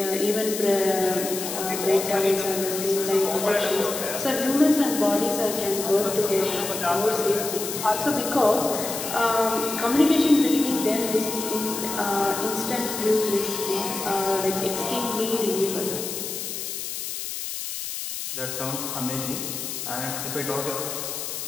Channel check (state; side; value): noise; left; hiss, 6 dB below the sound